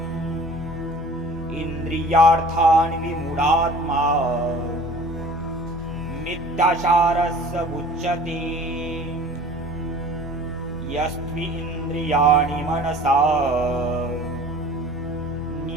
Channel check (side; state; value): right; noise; hum, 21 dB below the sound